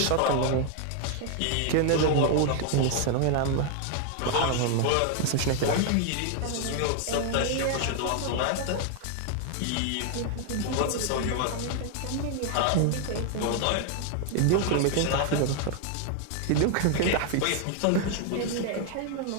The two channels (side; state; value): both; different; correlation 0.00